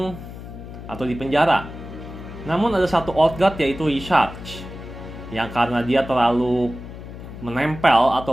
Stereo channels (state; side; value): noise; left; hum, 12 dB below the sound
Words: atau di penjara. Namun ada satu Old God, yaitu Y'Shaarj, yang karena dia terlalu menempel